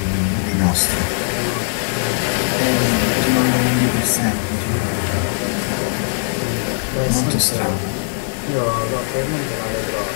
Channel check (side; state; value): right; silent; 66 dB below the other